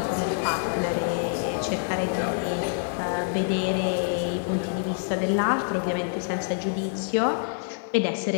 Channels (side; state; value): right; silent; 55 dB below the other